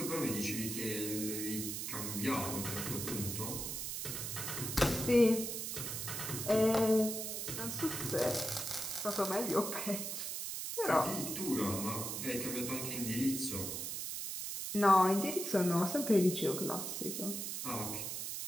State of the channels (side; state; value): right; noise; hiss, 4 dB below the sound